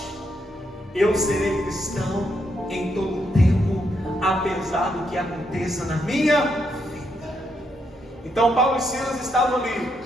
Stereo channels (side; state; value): both; normal; correlation 0.78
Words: Eu serei cristão em todo tempo, apesar do que aconteça na minha vida. Então Paulo e Silas estavam ali,